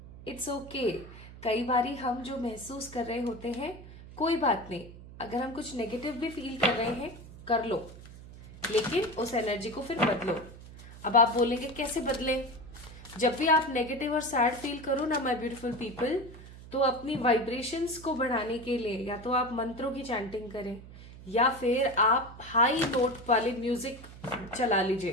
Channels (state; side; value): noise; right; hum, 16 dB below the sound